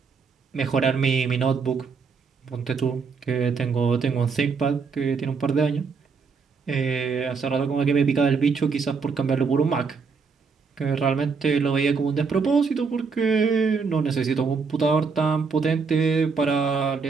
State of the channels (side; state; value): left; quieter; 5.2 dB